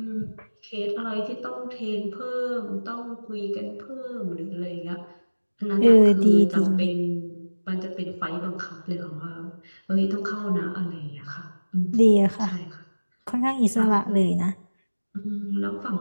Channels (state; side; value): inverted; both; correlation -1.00